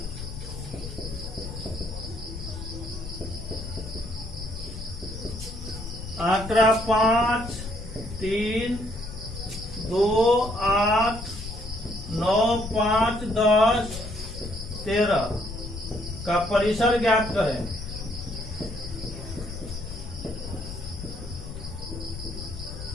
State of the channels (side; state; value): left; noise; rumble, 9 dB below the sound